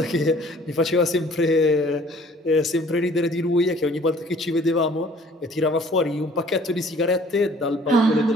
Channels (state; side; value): normal; both; correlation 0.54